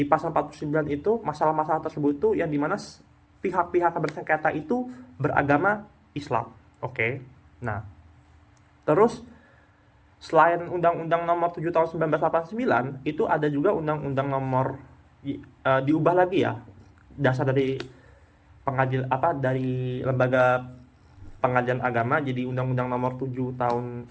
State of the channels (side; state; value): both; identical; correlation 1.00